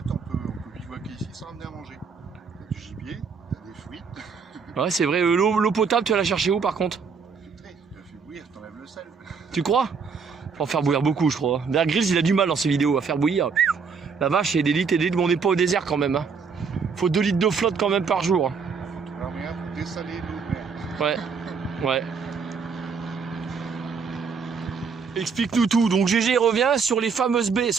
on peut bivouaquer ici sans amener à manger. T'as du gibier, t'as des fruits. Ouais, c'est vrai. L'eau potable, tu vas la chercher où par contre? Filtré, tu la fais bouillir, t'enlèves le sel. Tu crois? Faut en faire bouillir beaucoup, je crois. Bear Grylls, il a du mal dans ses vidéos à faire bouillir. La vache, il y a des litres et des litres, mais on n'est pas au désert quand même. Hein. Faut 2 litres d'eau flotte quand même par jour. Alors, regarde, pour dessaler l'eau de mer. Ouais, ouais. Explique-nous tout. Donc GG revient sur les fameuses baies.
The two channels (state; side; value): quieter; left; 5.6 dB